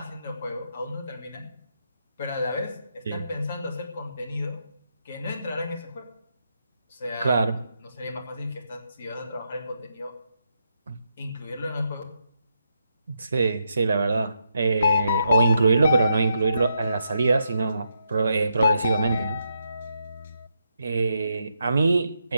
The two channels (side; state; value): both; inverted; correlation -0.81